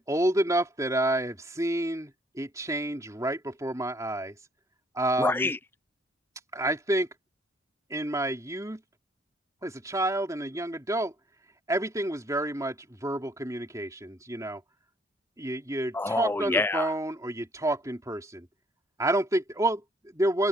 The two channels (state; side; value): normal; both; correlation 0.63